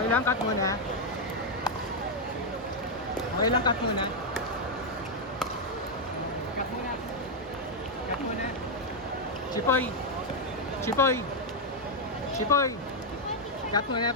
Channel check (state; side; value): normal; both; correlation -0.01